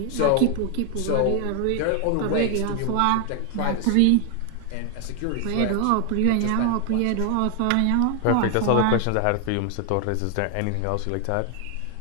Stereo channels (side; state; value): both; different; correlation 0.00